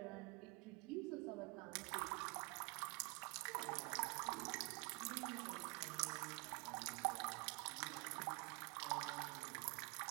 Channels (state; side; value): quieter; left; 29.0 dB